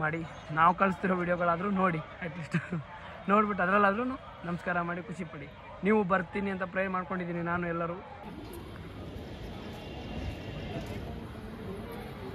ಮಾಡಿ. ನಾವು ಕಳಿಸ್ತಿರೋ ವಿಡಿಯೋಗಳಾದರೂ ನೋಡಿ, ಅಟ್ಲೀಸ್ಟ್ ನೋಡ್ಬಿಟ್ಟು ಅದರಲ್ಲಾದ್ರೂ ನಮಸ್ಕಾರ ಮಾಡಿ ಖುಷಿ ಪಡಿ. ನೀವು ಬರ್ತೀನಿ ಅಂತ ಪ್ರೇ ಮಾಡ್ಕೊಂಡಿದ್ದೀನಿ ನಾನು. ಎಲ್ಲರೂ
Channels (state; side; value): identical; both; correlation 1.00